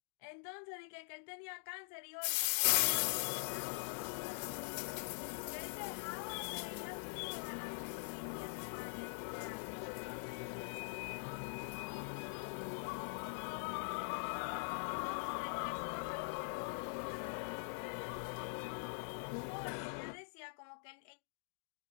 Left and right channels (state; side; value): silent; right; digital silence